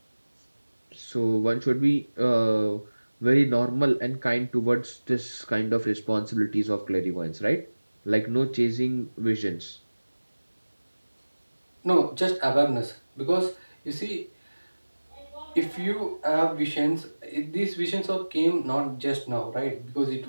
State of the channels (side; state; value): both; inverted; correlation -1.00